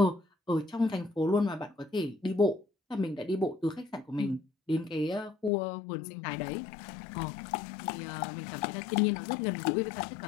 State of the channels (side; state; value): right; drops out; at 5.5 s